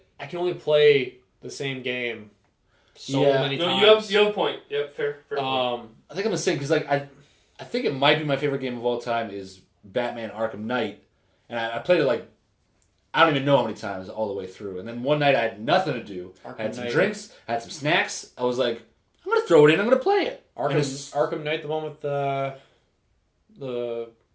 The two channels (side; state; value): both; identical; correlation 1.00